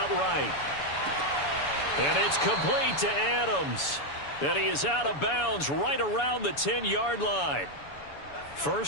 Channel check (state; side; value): late; right; 7.0 ms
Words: right. And it's complete to Adams. And he is out of bounds right around the 10-yard line.